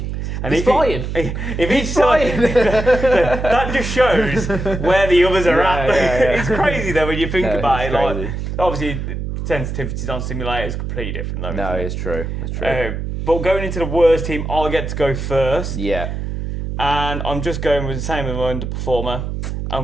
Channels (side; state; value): right; noise; hum, 4 dB below the sound